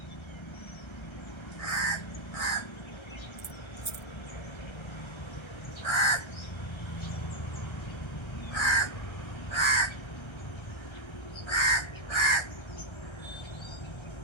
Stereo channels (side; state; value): right; late; 1.3 ms